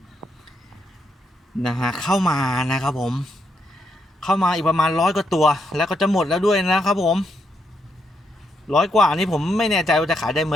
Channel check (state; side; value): normal; both; correlation 0.79